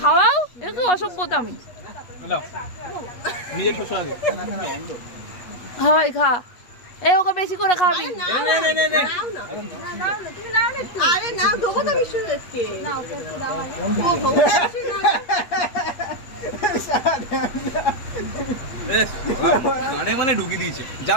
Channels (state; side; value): late; right; 8.5 ms